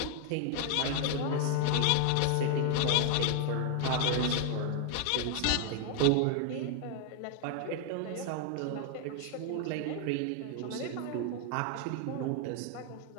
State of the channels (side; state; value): both; different; correlation 0.00